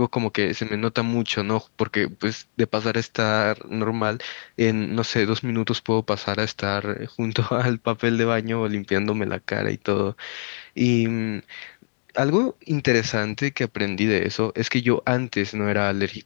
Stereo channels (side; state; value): right; silent; digital silence